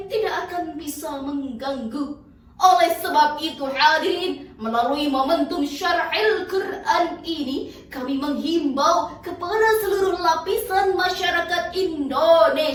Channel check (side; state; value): both; identical; correlation 1.00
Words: tidak akan bisa mengganggu. Oleh sebab itu hadirin, melalui momentum syar'il Quran ini, kami menghimbau kepada seluruh lapisan masyarakat